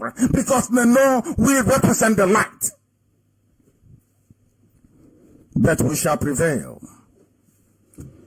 Because they know we represent the light. But we shall prevail.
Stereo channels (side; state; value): both; identical; correlation 1.00